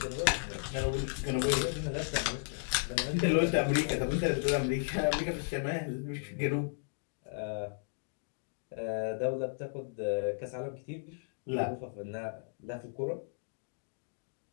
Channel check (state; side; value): silent; right; digital silence